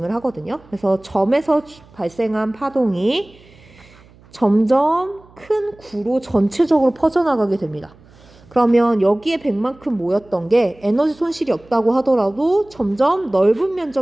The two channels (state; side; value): noise; right; hum, 26 dB below the sound